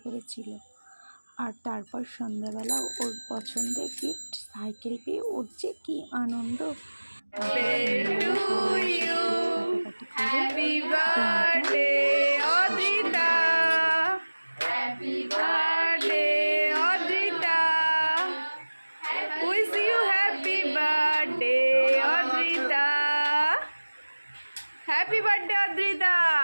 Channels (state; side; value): inverted; both; correlation -1.00